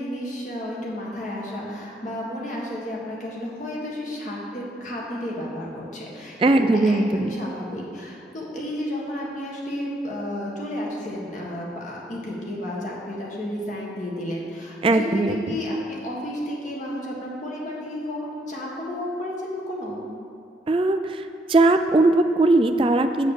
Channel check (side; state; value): both; normal; correlation 0.71